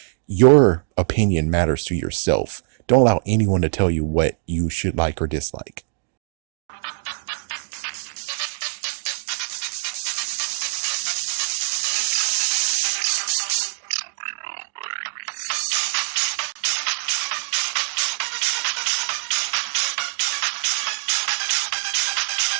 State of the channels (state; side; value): silent; left; digital silence